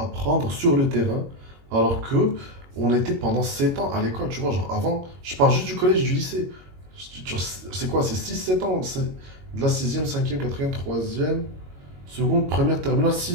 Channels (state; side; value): late; left; 22 ms